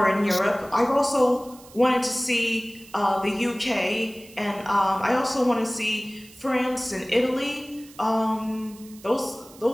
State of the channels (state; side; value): noise; right; hiss, 22 dB below the sound